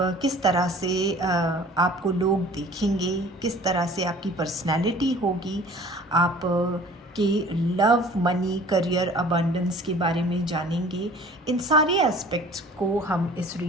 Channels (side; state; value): both; normal; correlation 0.48